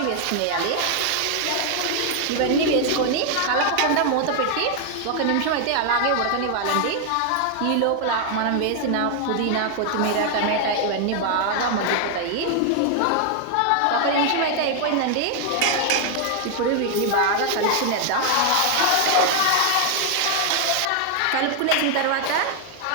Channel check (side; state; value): both; different; correlation 0.00